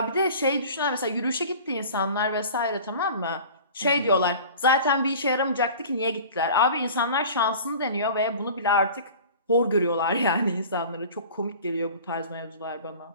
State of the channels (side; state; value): both; inverted; correlation -0.41